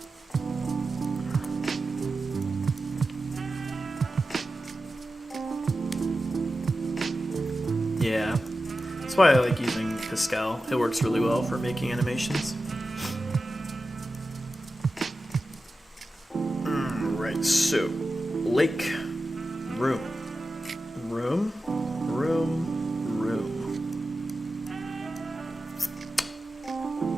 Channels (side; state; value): both; normal; correlation 0.93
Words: Yeah, that's why I like using Pascal. It works really well for making animations. Right, so lake, room, room, room, room.